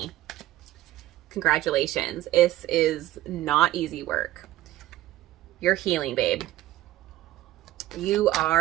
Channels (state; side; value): quieter; left; 15.0 dB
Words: Congratulations. This is not easy work. You're healing, babe. You